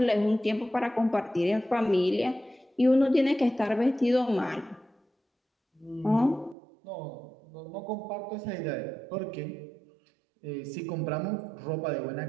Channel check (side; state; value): left; drops out; at 6.6 s